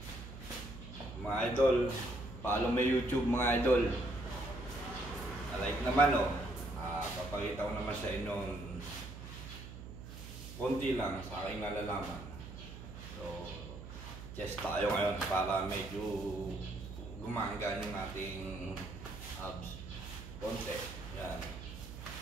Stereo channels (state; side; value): noise; right; hum, 12 dB below the sound